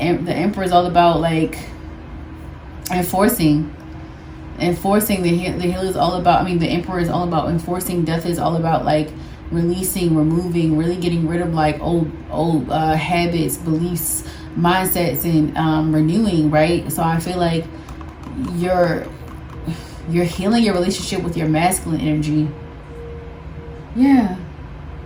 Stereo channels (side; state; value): both; identical; correlation 1.00